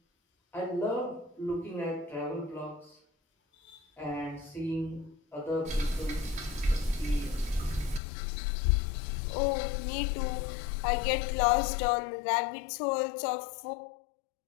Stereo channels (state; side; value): drops out; right; at 8.0 s